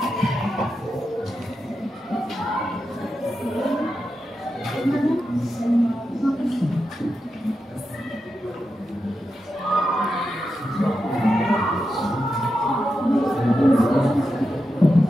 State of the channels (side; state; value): both; normal; correlation 0.88